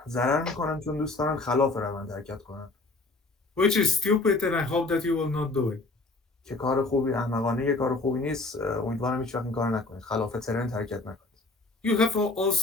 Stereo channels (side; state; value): right; quieter; 3.2 dB